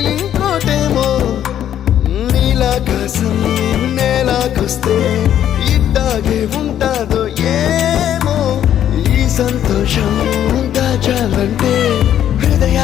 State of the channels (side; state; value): right; quieter; 10.6 dB